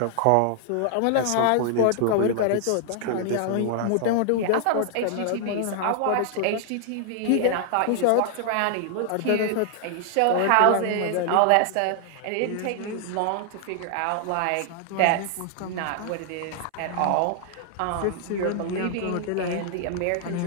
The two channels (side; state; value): both; different; correlation 0.00